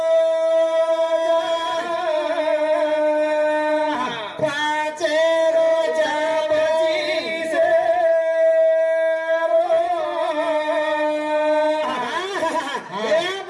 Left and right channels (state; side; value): identical; both; correlation 1.00